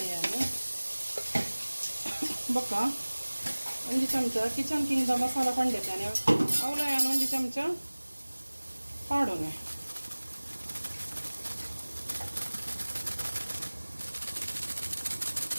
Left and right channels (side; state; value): both; inverted; correlation -1.00